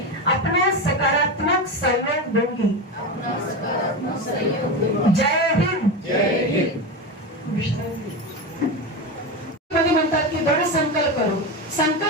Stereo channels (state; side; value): normal; both; correlation 0.18